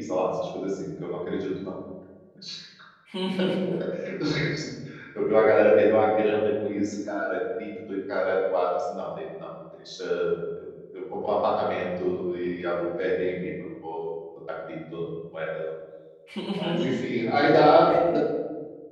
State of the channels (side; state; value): both; identical; correlation 1.00